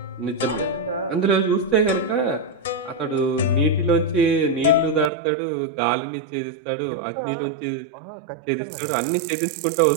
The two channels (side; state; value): left; drops out; at 5.1 s